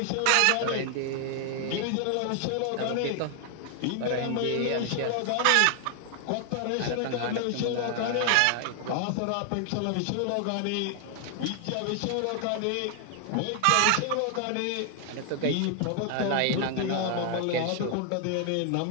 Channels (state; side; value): different; both; correlation 0.00